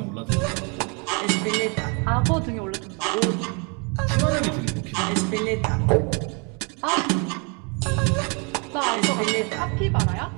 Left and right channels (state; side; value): quieter; left; 33.7 dB